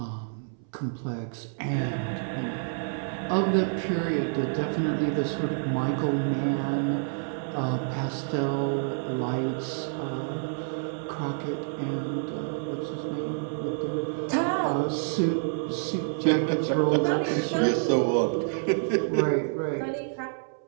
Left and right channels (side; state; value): left; silent; 59 dB below the other